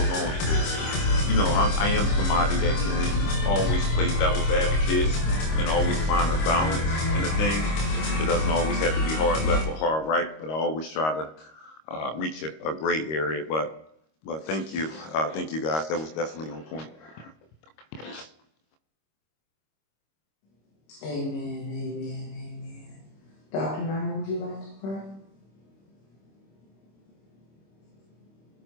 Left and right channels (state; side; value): late; right; 26 ms